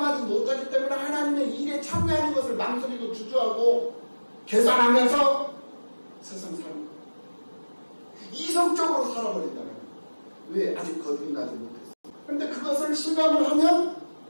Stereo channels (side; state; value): both; inverted; correlation -1.00